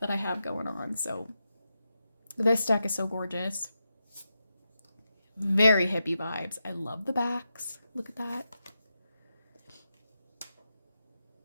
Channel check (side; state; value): both; inverted; correlation -0.88